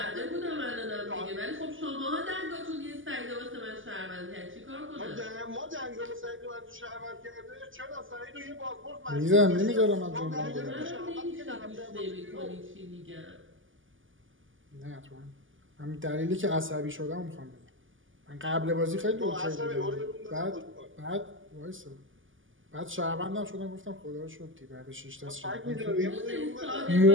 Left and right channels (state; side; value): late; left; 0.58 ms